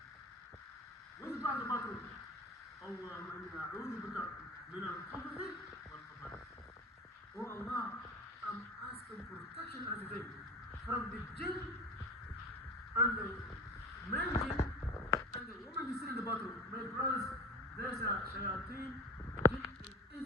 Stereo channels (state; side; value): normal; both; correlation 0.33